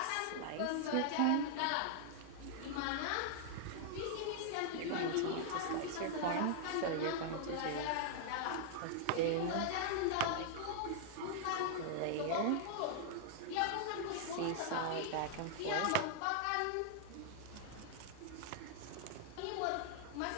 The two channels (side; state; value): both; different; correlation -0.01